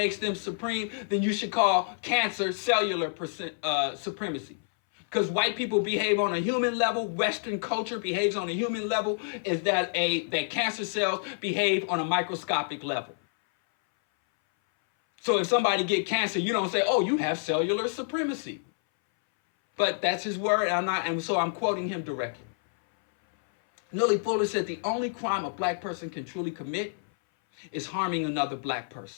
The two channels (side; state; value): right; silent; 59 dB below the other